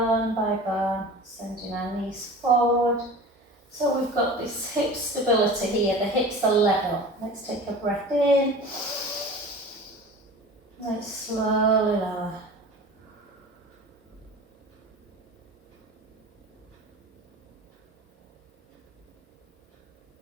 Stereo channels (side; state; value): both; normal; correlation 0.37